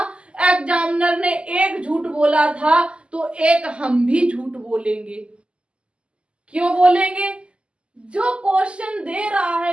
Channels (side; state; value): left; late; 0.053 ms